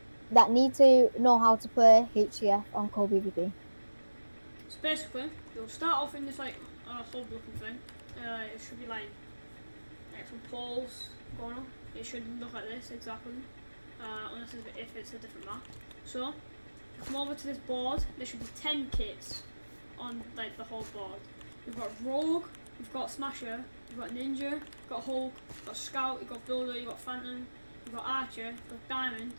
that need to know how to play HCF on Cold.Pvp. So basically, you'll start off in this like hub looking thing. It should be like some poles going on. It should look like this exactly, unless if it's a different map. So, come over to this board. There should be 10 kits on like the whole board. You've got Rogue, you've got Smasher, you've got Ninja, you've got Hulk, you've got Scout, you've got Builder, you've got Phantom, you've got Archer, you've got Diamond,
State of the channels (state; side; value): inverted; both; correlation -1.00